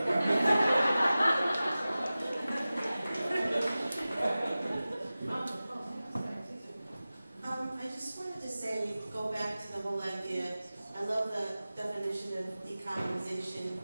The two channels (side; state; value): both; inverted; correlation -0.96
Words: I just wanted to say, go back to the whole idea. I love the definition of decolonization,